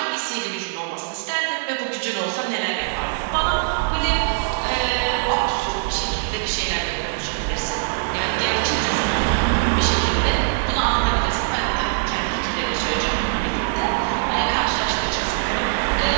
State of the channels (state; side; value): silent; left; digital silence